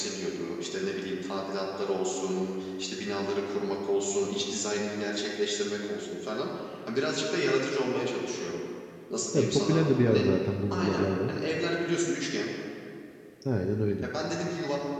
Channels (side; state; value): both; identical; correlation 1.00